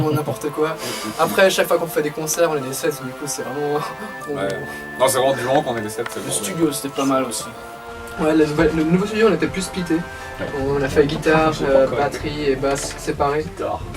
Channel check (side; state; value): both; identical; correlation 1.00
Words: n'importe quoi. Après, chaque fois qu'on fait des concerts, on est des 7, du coup c'est vraiment... Ouais. Non, c'est vraiment du moment qu'on est des 7. Le studio, c'était pas mal aussi. Ouais, le nouveau studio, on était plus splitté. Ouais. On a fait guitare, Je sais pas encore. batterie et basse séparées. Guitare.